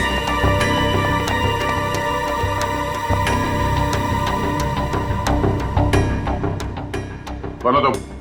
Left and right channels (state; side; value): identical; both; correlation 1.00